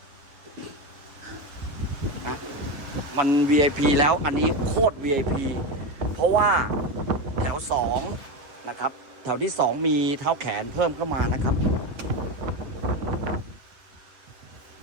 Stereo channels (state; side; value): late; left; 7.0 ms